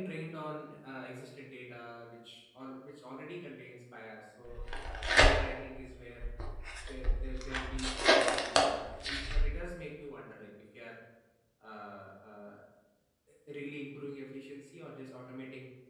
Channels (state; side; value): identical; both; correlation 1.00